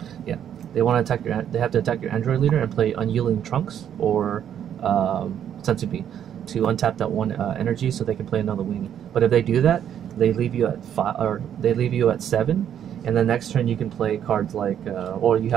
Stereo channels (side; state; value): left; quieter; 9.6 dB